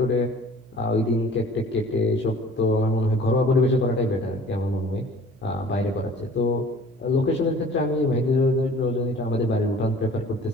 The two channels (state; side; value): noise; right; hum, 29 dB below the sound